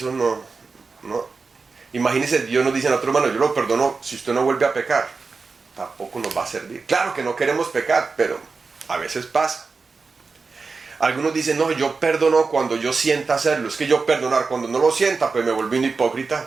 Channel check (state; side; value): quieter; left; 4.5 dB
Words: no. Imagínese, Dios nos dice a otro hermano, yo lo perdono si usted no vuelve a pecar. Tampoco nos va a servir. Claro que no queremos pecar, pero a veces pasa. Algunos dicen, no, yo perdono cuando yo sienta hacerlo. Es que yo perdonar, cuando no lo sienta, pues me vuelvo un